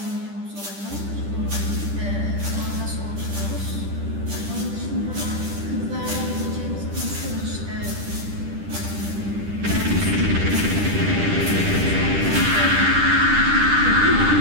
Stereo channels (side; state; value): left; late; 10 ms